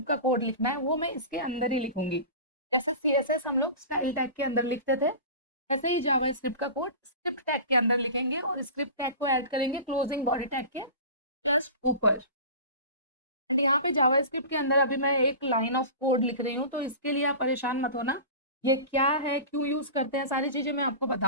का कोड लिखना है वो मैं इसके अंदर ही लिखूंगी। जैसे CSS हम लोग स्टाइल टैग के अंदर लिखते थे, वैसे ही जावास्क्रिप्ट का कोड स्क्रिप्ट टैग के अंदर लिखेंगे और स्क्रिप्ट टैग को ऐड करेंगे क्लोजिंग बॉडी टैग के जस्ट ऊपर। एंड यहाँ पे जावास्क्रिप्ट के अंदर अभी मैं एक लाइन ऑफ कोड लिख रही हूँ, तो इसके लिए आप परेशान मत होना। ये क्या है, क्यों यूज करते हैं, सारी चीजें मैं आपको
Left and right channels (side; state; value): both; inverted; correlation -0.34